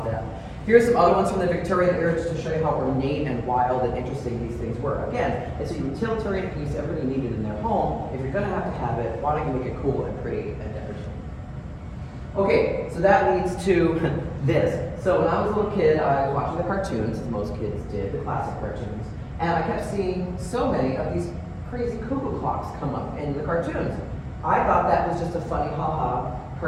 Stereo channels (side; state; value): both; identical; correlation 1.00